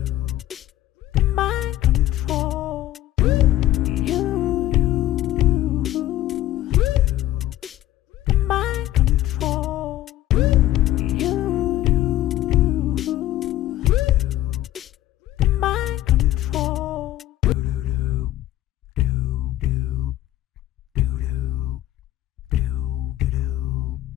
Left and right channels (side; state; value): right; quieter; 14.2 dB